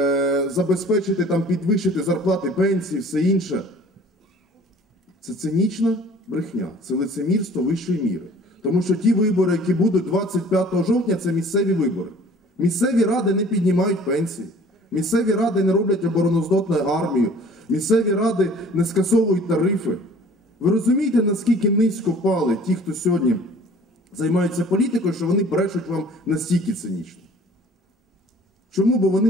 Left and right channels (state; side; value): normal; both; correlation 0.50